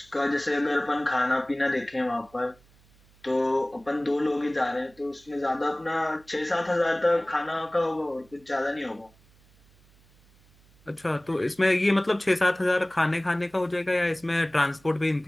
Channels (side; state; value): right; noise; hum, 29 dB below the sound